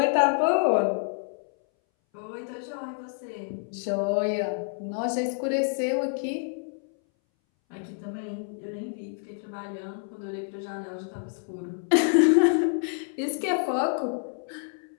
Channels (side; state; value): right; silent; 59 dB below the other